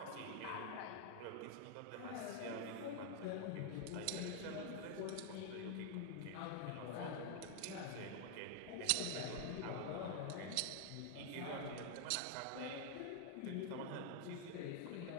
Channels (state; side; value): different; both; correlation 0.00